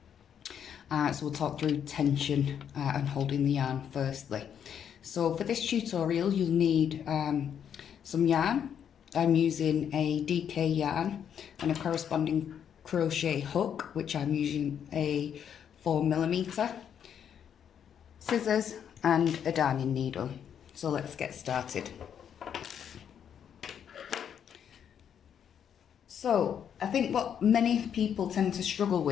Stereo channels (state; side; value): quieter; right; 8.5 dB